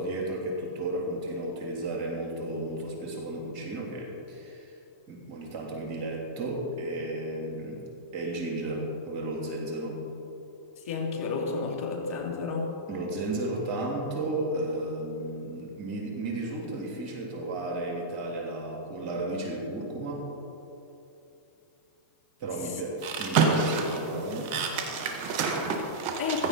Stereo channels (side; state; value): left; late; 1.8 ms